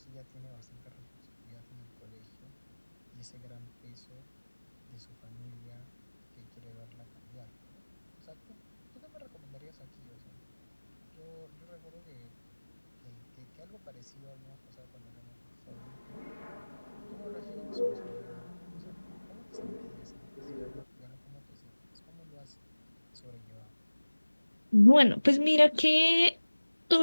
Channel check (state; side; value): inverted; both; correlation -1.00